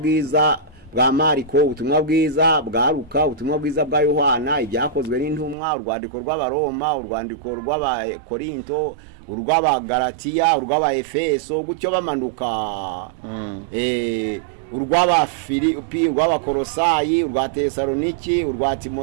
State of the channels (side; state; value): left; drops out; at 5.6 s